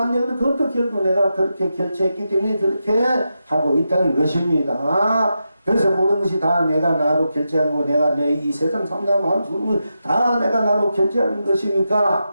그것도 결국 내가 그렇게 결제했기 때문에 그렇게 하고 있다는 것입니다. 그래서 모든 것이 다 내가 나로 결제하는 거 내가 내 이 세상 삼남한 죽음을 다 내가 나로 결제하는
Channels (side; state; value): both; inverted; correlation -0.88